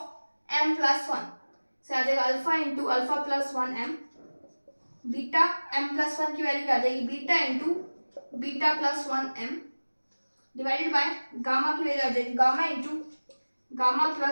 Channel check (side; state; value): both; inverted; correlation -1.00